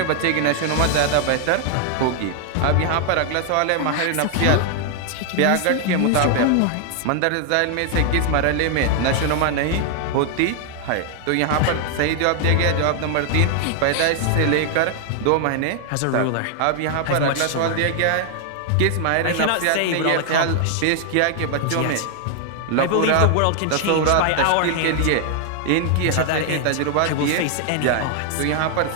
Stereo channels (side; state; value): both; different; correlation 0.00